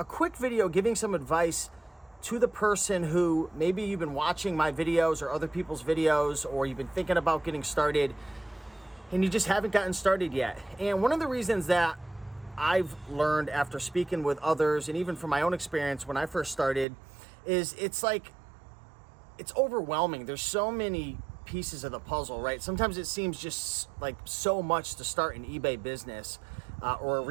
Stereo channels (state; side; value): drops out; left; at 16.9 s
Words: quick video giving some advice to the person who maybe you've been watching my videos or other people's videos, or you've been thinking about getting started and you just haven't gotten started yet. And one of the reasons that I've learned after speaking with others, and even from my own experience when I first started, is it's overwhelming. There's so many pieces of the puzzle, right? Sometimes it seems just like so much to start an eBay business or a